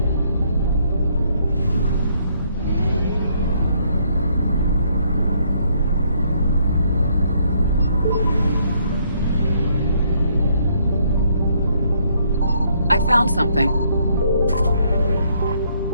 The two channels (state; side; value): inverted; both; correlation -0.69